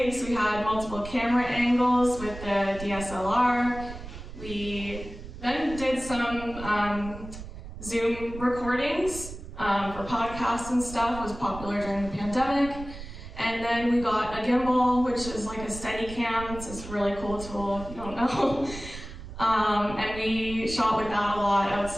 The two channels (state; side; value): noise; right; rumble, 12 dB below the sound